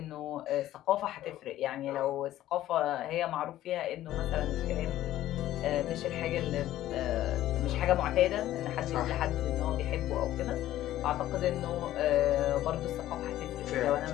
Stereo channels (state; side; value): quieter; right; 13.8 dB